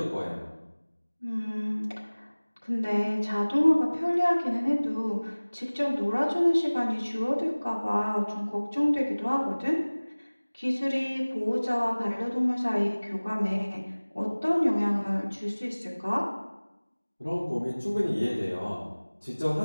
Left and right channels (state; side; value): inverted; both; correlation -1.00